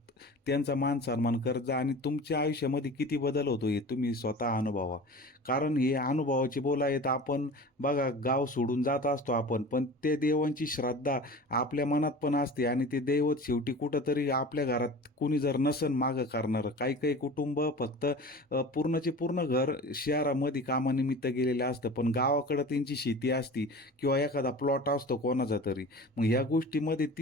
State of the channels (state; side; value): normal; both; correlation 0.37